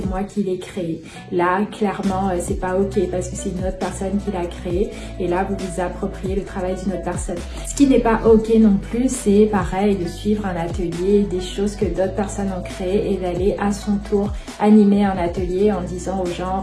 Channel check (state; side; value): identical; both; correlation 1.00